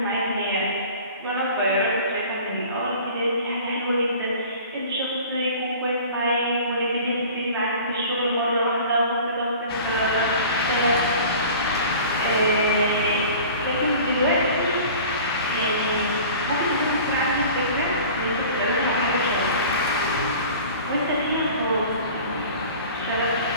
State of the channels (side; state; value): both; inverted; correlation -0.43